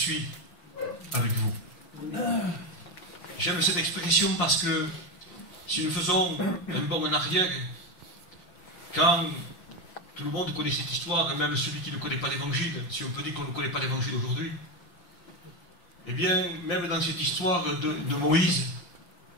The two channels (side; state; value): right; late; 5.7 ms